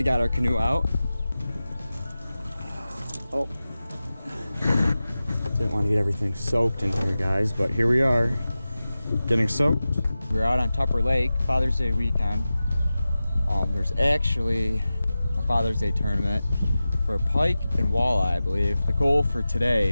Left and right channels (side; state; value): both; inverted; correlation -0.95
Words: got our canoe out. Oh, didn't want to get everything soaked in here, guys, but here we are, getting soaked. We're out on Tupper Lake, Father's Day weekend. There's actually a Father's Day tournament for pike and walleye, I believe. The goal for